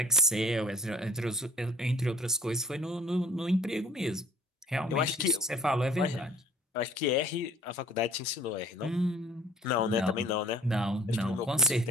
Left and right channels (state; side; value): normal; both; correlation 0.52